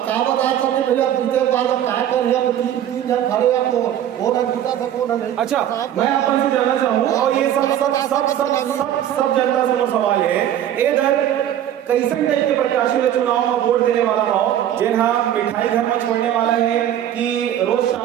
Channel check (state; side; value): quieter; left; 11.0 dB